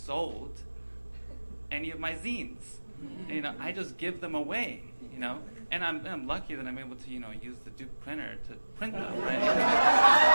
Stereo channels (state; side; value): inverted; both; correlation -1.00